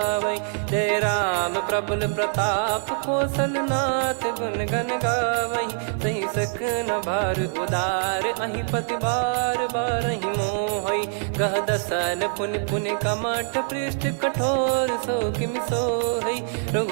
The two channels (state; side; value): silent; left; digital silence